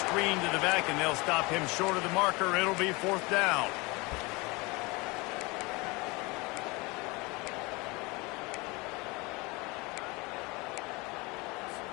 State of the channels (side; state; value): right; quieter; 25.5 dB